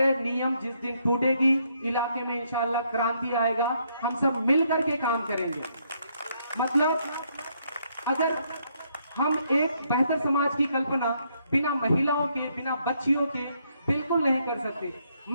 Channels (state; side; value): inverted; both; correlation -0.73